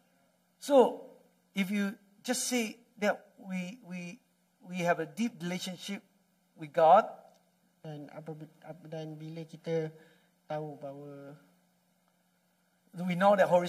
So if you just say that we have a deep relationship with God, Dan bila kita tahu bahawa we know that Holy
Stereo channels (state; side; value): identical; both; correlation 1.00